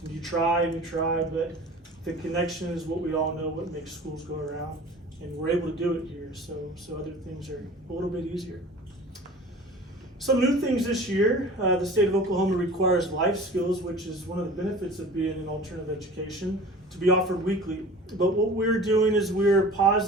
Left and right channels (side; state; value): both; normal; correlation 0.41